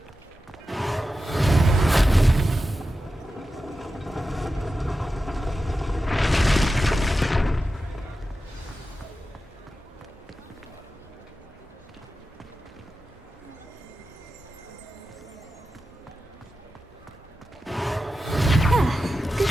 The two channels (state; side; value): normal; both; correlation 0.92